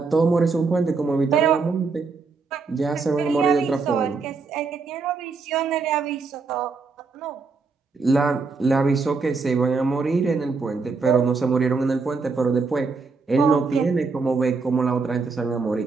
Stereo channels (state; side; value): quieter; left; 4.5 dB